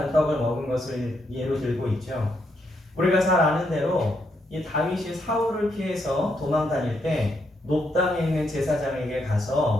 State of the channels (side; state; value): both; normal; correlation 0.78